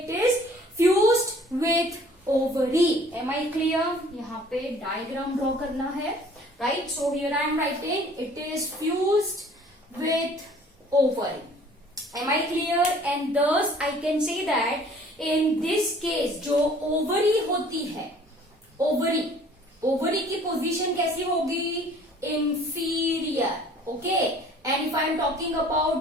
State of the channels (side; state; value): both; normal; correlation 0.53